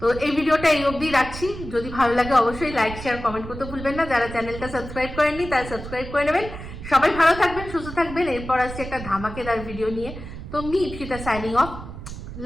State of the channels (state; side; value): noise; right; rumble, 11 dB below the sound